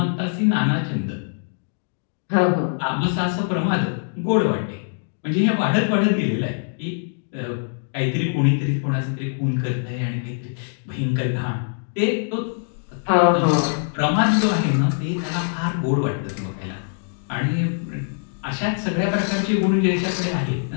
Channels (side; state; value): right; silent; digital silence